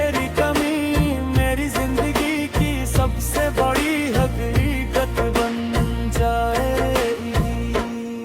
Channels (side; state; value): both; identical; correlation 1.00